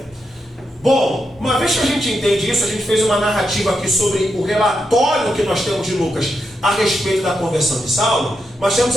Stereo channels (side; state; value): both; normal; correlation 0.84